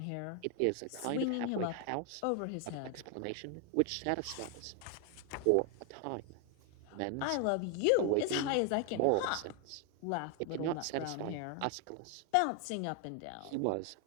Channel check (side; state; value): both; different; correlation 0.00